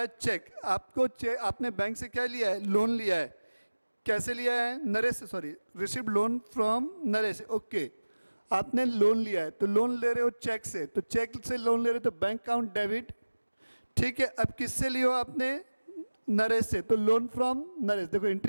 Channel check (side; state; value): both; inverted; correlation -1.00